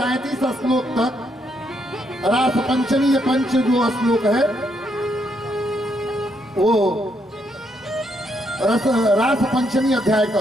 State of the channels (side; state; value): both; normal; correlation 0.76